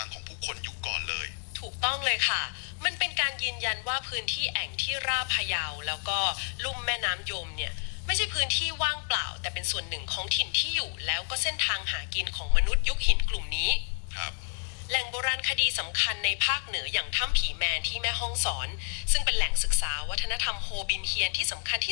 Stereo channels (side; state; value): right; silent; 58 dB below the other